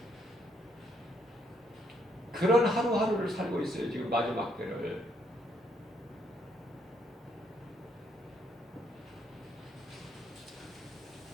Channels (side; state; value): both; normal; correlation 0.72